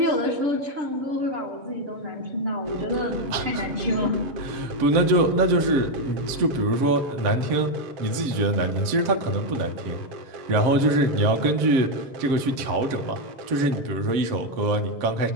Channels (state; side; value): late; left; 7.6 ms